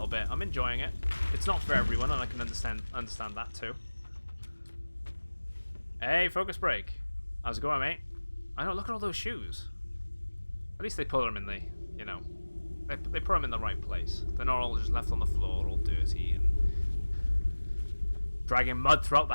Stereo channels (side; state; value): both; inverted; correlation -1.00